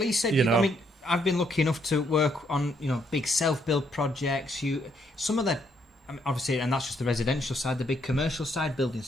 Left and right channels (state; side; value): normal; both; correlation 0.73